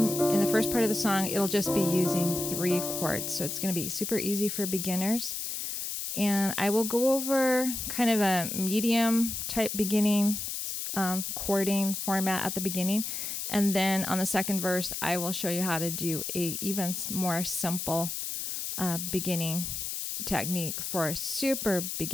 in the first part of the song, it'll just be using 3 chords. So it's going to be super easy for beginners. And I will go over kind of a medium type beginning chording format at the beginning. And then on the second verse, I will show you how to do a even more simple beginning technique for super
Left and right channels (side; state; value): left; noise; hiss, 4 dB below the sound